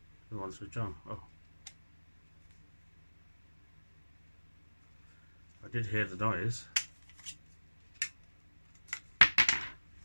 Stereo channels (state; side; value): inverted; both; correlation -1.00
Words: you want to switch on? Oh, I did hear the noise.